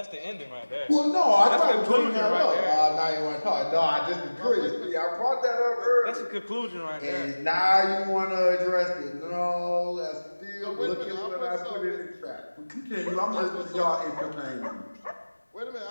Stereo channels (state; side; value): inverted; both; correlation -1.00